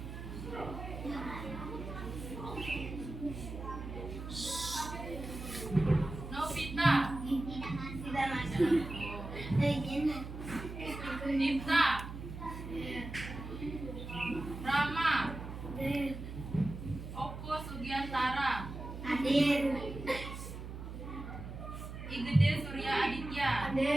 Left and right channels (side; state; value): right; noise; hum, 9 dB below the sound